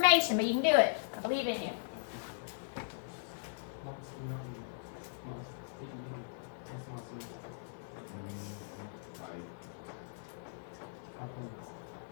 but you can do it. I believe in you.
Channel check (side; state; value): right; silent; digital silence